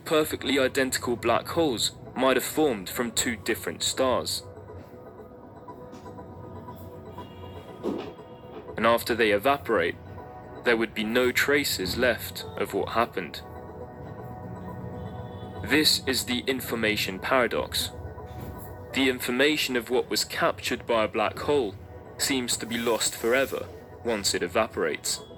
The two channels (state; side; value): identical; both; correlation 1.00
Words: identical black holes might have formed from two different stars. And after they evaporate, there would be no traces left of what happened. This is the information paradox. The information of what was captured by a black hole seems to be lost forever once it evaporates.